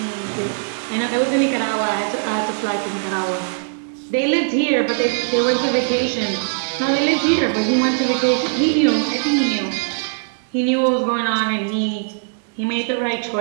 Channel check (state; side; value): silent; left; 66 dB below the other